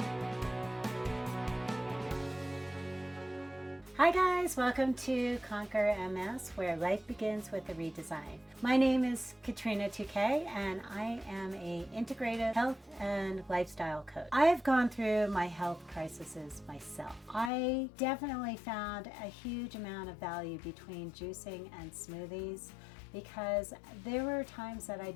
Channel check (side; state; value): right; drops out; at 17.5 s